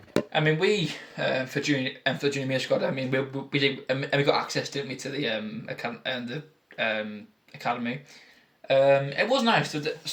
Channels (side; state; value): both; identical; correlation 1.00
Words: we for junior year squad. I mean, we did, and we got access, didn't we, to the academy. It was nice. There